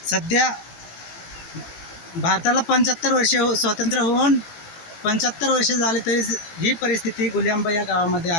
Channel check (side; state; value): right; late; 18 ms